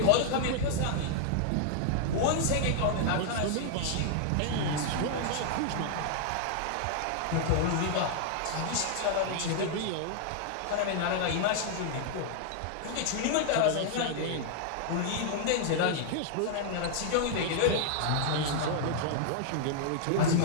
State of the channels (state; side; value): different; both; correlation -0.01